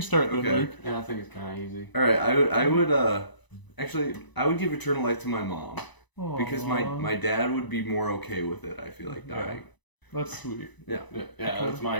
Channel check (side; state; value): right; late; 1.0 ms